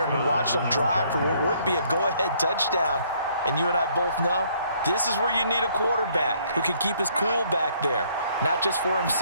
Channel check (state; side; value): inverted; both; correlation -0.65